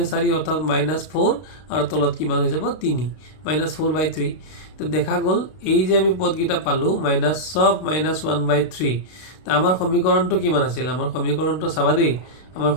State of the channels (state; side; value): late; right; 32 ms